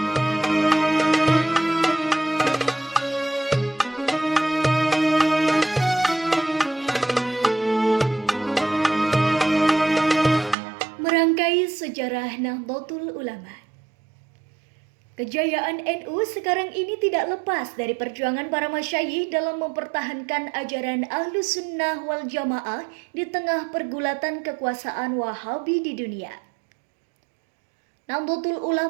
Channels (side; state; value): left; drops out; at 10.6 s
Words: sejarah Nahdlatul Ulama. Kejayaan NU sekarang ini tidak lepas dari perjuangan para masyayikh dalam mempertahankan ajaran Ahlus Sunnah wal Jamaah di tengah pergulatan kekuasaan Wahabi di dunia. Nahdlatul